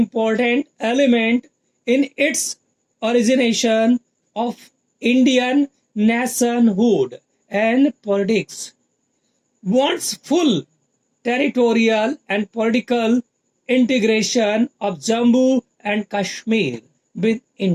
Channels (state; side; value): identical; both; correlation 1.00